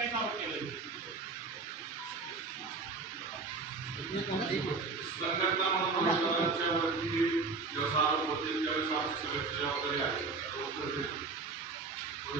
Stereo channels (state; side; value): quieter; left; 4.2 dB